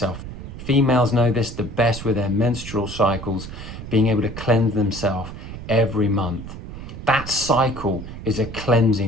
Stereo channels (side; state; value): right; noise; rumble, 11 dB below the sound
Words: Females know this the best with their menstrual cycles, being able to cleanse themselves every month. That cycle is a